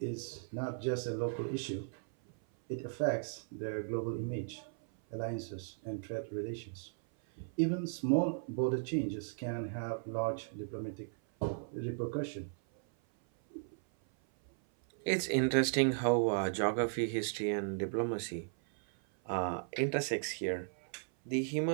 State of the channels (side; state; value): left; silent; 54 dB below the other